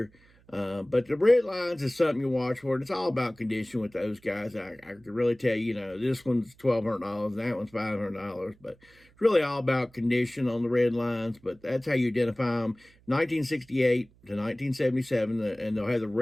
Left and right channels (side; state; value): right; noise; hum, 29 dB below the sound